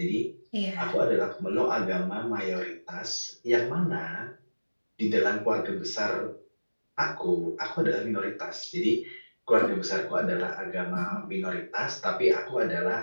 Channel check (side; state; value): both; inverted; correlation -1.00